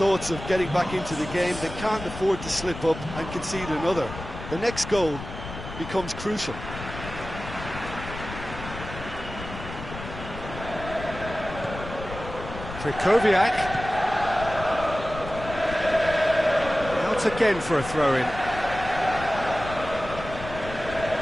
of getting back into the game, they can't afford to slip up and concede another. The next goal becomes crucial. Krychowiak. Out again for a throw-in.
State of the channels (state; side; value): noise; left; rumble, 10 dB below the sound